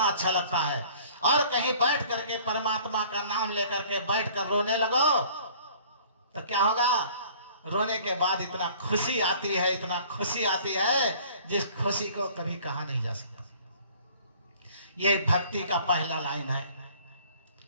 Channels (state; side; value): inverted; both; correlation -0.53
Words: अच्छा लगता है। और कहीं बैठ करके परमात्मा का नाम लेकर के बैठ कर रोने लगो तो क्या होगा, रोने के बाद इतना खुशी आती है, इतना खुशी आती है जिस खुशी को कभी कहा नहीं जा सकता। ये भक्ति का पहला लाइन है।